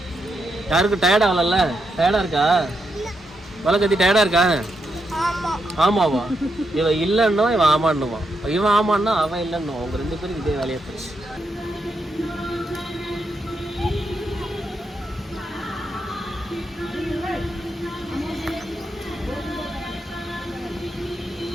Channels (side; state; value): both; normal; correlation 0.82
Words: யாருக்கு டயர்ட் ஆகலல்ல? டயர்டாக இருக்கா? வலை கத்தி டயர்டாக இருக்கா? ஆமாவா? இவன் இல்லைன்னா இவன் ஆமான்னுவான், இவன் ஆமான்னா அவன் இல்லைன்னுவான். அவங்க 2 பேரும் இதே வேலையை போச்சு.